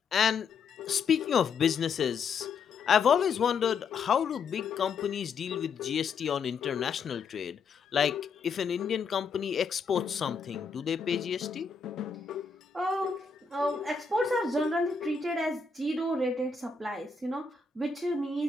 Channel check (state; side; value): quieter; right; 5.3 dB